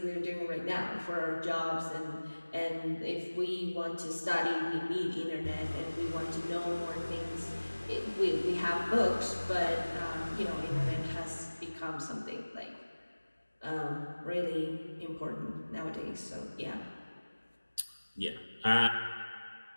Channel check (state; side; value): inverted; both; correlation -1.00